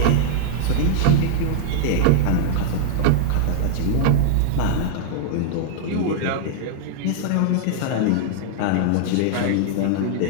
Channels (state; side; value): different; both; correlation -0.01